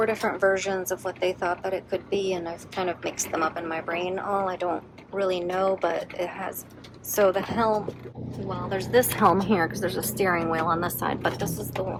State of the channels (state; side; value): identical; both; correlation 1.00